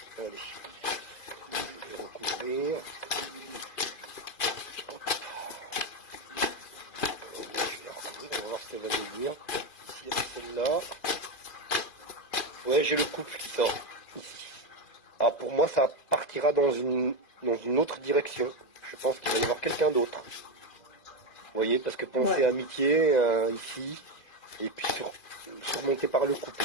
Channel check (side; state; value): right; late; 2.4 ms